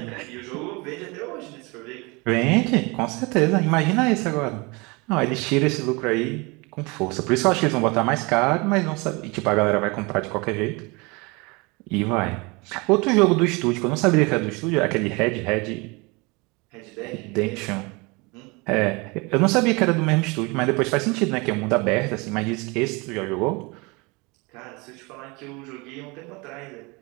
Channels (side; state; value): left; quieter; 27.0 dB